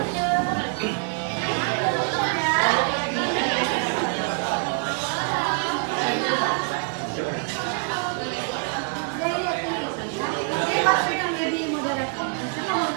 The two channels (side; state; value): left; quieter; 39.8 dB